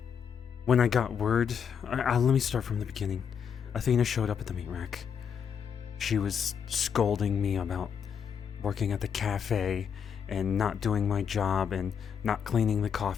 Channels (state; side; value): quieter; right; 7.4 dB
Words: When I got word, let me start from the beginning. Athena showed up at the meat rack. She was scolding me about working at the cafe and not doing my job and not cleaning the